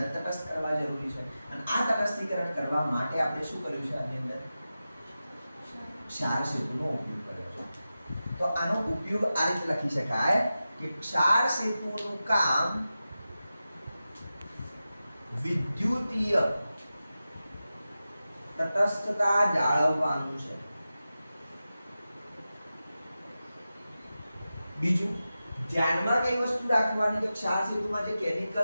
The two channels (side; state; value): both; inverted; correlation -0.93